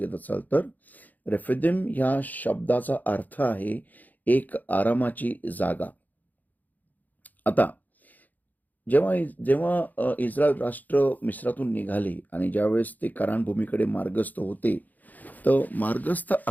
असाल तर. रेफिदिम ह्या शब्दाचा अर्थ आहे एक आरामाची जागा. आता जेव्हा इस्रायल राष्ट्र मिस्रातून निघाले आणि ज्यावेळेस ते कनान भूमीकडे मार्गस्थ होते, तर मार्गस्थ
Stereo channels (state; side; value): late; right; 0.082 ms